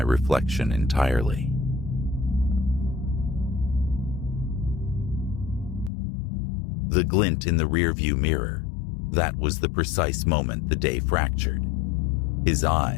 reflection entirely. The glint in the rearview mirror, that was the precise moment the day fractured. His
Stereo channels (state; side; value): drops out; right; at 5.9 s